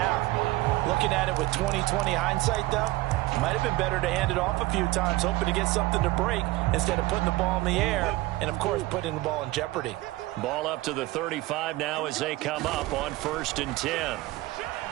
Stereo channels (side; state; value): left; quieter; 19.1 dB